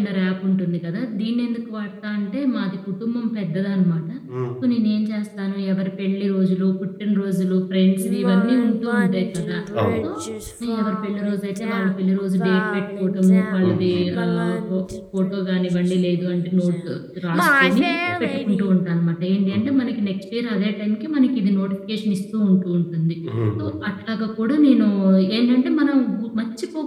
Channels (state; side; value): identical; both; correlation 1.00